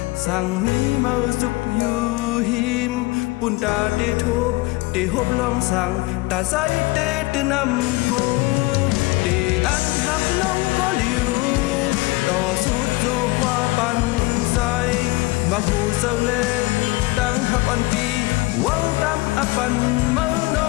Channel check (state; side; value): quieter; right; 22.2 dB